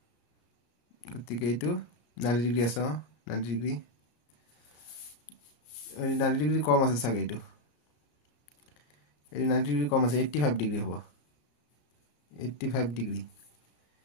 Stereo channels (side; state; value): right; late; 34 ms